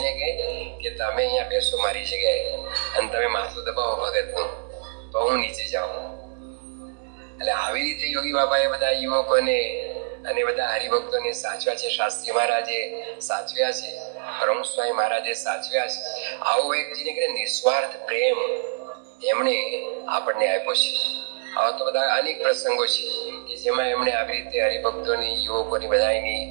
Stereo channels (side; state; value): left; silent; digital silence